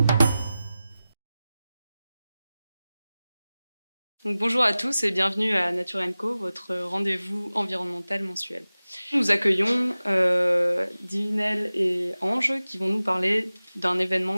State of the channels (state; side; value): inverted; both; correlation -0.96